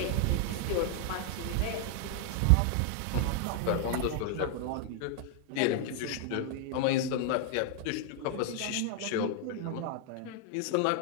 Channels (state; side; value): different; both; correlation 0.00